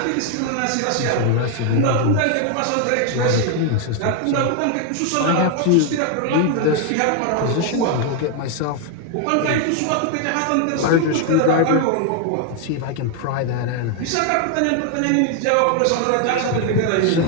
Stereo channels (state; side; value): different; both; correlation 0.01